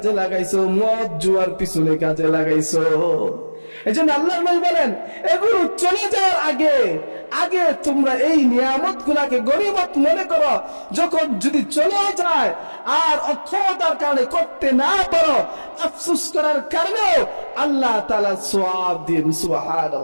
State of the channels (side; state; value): both; inverted; correlation -1.00